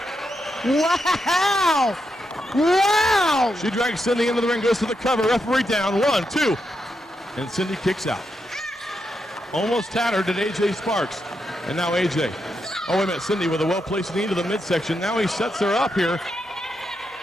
Wow. Wow. She drags Cindy into the ring, goes to the cover. Referee down. 1, 2. And Cindy kicks out. Almost tattered at AJ Sparx. And now AJ. Oh, wait a minute. Cindy with a well-placed knee to the midsection. Now he sets her up here.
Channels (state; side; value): normal; both; correlation 0.84